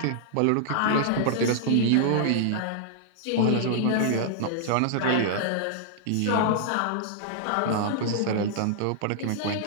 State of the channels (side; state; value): both; different; correlation -0.01